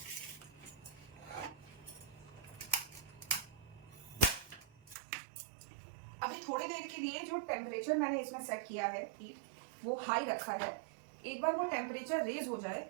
अभी थोड़ी देर के लिए जो टेम्परेचर मैंने इसमें सेट किया है हीट, वो हाई रखा है. एक बार वो टेम्परेचर रेज हो जाए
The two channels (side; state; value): left; drops out; at 5.0 s